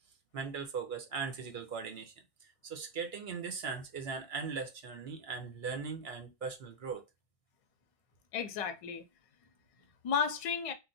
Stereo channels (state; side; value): late; right; 1.6 ms